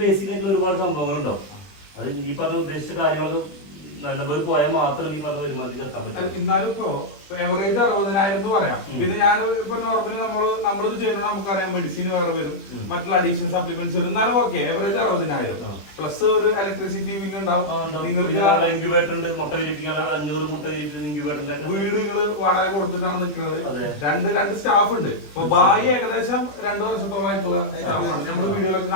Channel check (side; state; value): right; late; 20 ms